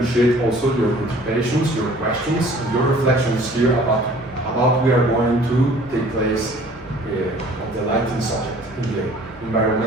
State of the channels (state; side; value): normal; both; correlation 0.52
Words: also your participations, your questions, and your reflections here about we are going to take place of the lighting subject in the